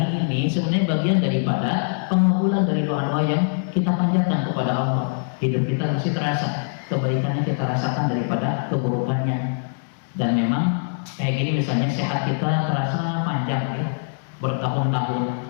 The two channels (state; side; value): silent; right; digital silence